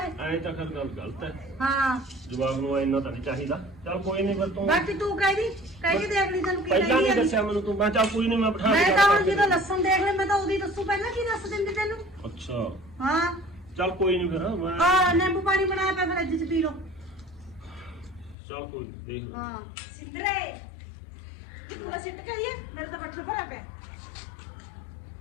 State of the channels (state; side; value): drops out; right; at 18.4 s